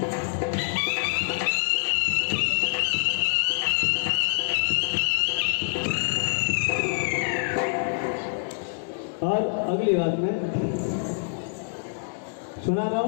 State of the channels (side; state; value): right; silent; digital silence